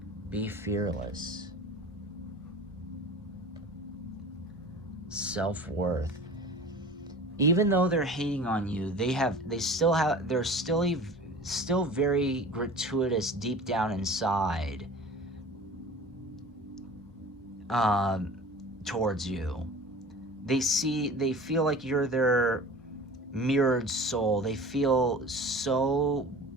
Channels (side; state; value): both; normal; correlation 0.40